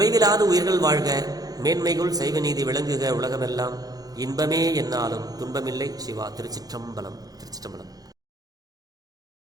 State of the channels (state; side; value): late; left; 0.18 ms